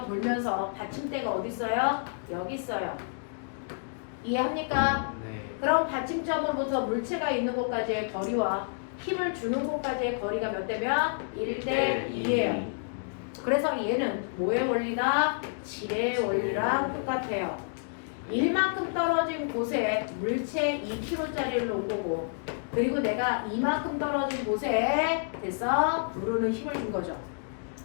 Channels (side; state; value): right; silent; digital silence